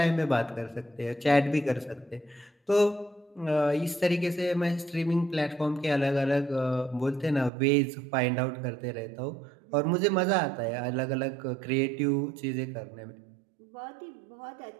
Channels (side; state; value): left; drops out; at 7.5 s